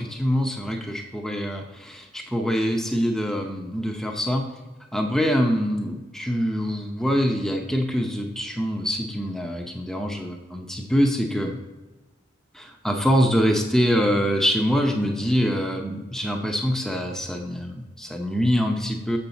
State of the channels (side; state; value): both; normal; correlation 0.86